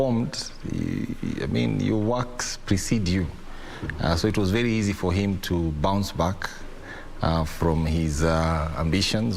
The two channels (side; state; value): both; identical; correlation 1.00